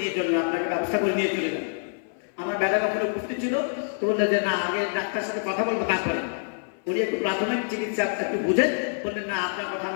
চলে যান, আপনাকে ব্যবস্থা করে নিয়ে চলে যান। আমার বেটা কখনো উপস্থিত ছিল, তো বললেন যে না আগে ডাক্তার সাথে কথা বলবো তারপরে। উনি একটু প্রাথমিক চিকিৎসা একটু বুঝেন, বললেন না আপনার কথা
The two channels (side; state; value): right; silent; 58 dB below the other